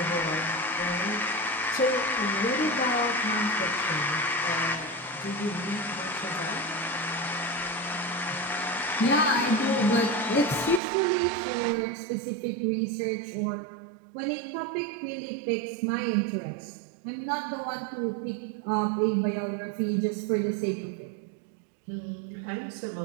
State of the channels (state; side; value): drops out; left; at 10.8 s